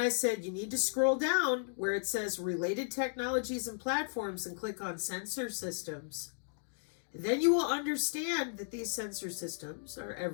said, you need to scroll down where it says related technologies and platforms and click on sensor systems. Then you will understand that these sensor systems are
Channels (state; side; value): silent; right; digital silence